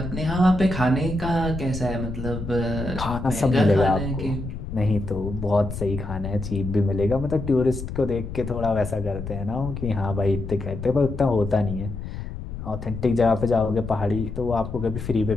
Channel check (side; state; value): left; noise; rumble, 7 dB below the sound